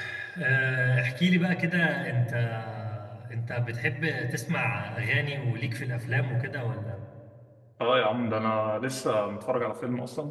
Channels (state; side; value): identical; both; correlation 1.00